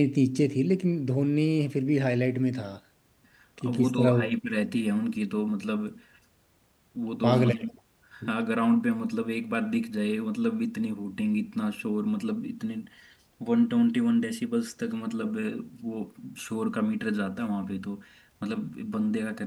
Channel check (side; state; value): both; identical; correlation 1.00